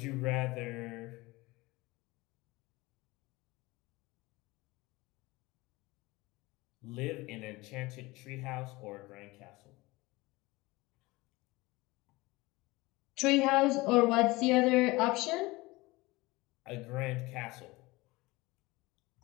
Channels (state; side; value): quieter; right; 21.7 dB